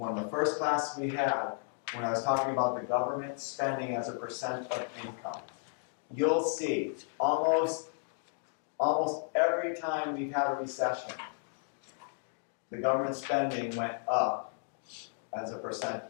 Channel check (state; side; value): silent; right; 55 dB below the other